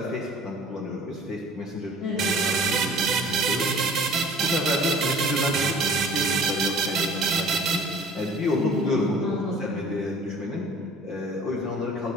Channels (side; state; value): both; normal; correlation 0.48